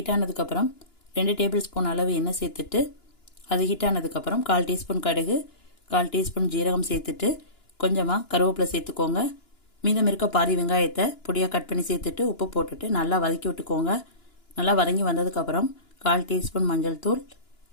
ஆனதுக்கப்புறம் 2 டேபிள் ஸ்பூன் அளவு எண்ணெய் சேர்த்துட்டு அது ஹீட் ஆனதுக்கப்புறம் 1/4 டீஸ்பூன் கடுகு, 1/4 டீஸ்பூன் ஜீரகம் சேர்த்துட்டு கொஞ்சமாக கருவேப்பிலை சேர்த்துக்கோங்க. மீதம் இருக்க பாதி வெங்காயத்தை பொடியாக கட் பண்ணி சேர்த்துட்டு உப்பு போட்டுட்டு நல்லா வதக்கி விட்டுக்கோங்க. நல்லா வதங்கி வந்ததுக்கப்புறம் 1/4 டீஸ்பூன் மஞ்சள் தூள்,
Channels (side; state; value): right; late; 2.9 ms